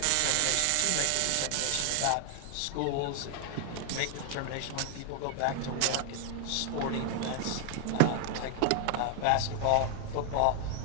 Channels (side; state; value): both; different; correlation 0.00